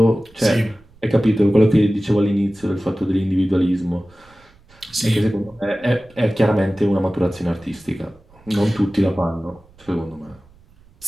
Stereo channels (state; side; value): noise; right; rumble, 28 dB below the sound